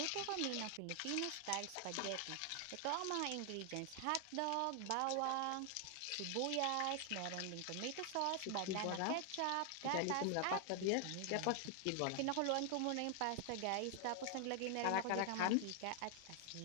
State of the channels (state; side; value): different; both; correlation 0.00